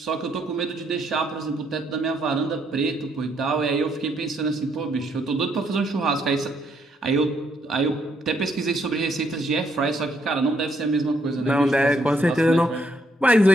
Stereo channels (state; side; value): normal; both; correlation 0.73